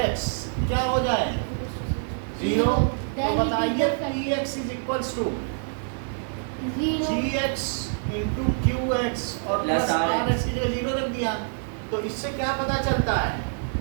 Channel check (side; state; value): left; silent; digital silence